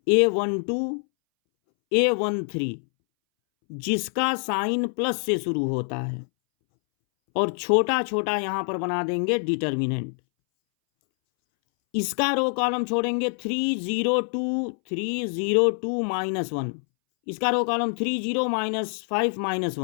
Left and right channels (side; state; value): right; silent; 62 dB below the other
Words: A12, A13, जिसका साइन प्लस से शुरू होता है, और छोटा छोटा यहां पर बना देंगे डिटर्मिनेंट। इसका रो कॉलम छोड़ेंगे 3 0 2 3 0 2 -1, इसका रो कॉलम 3 0 -5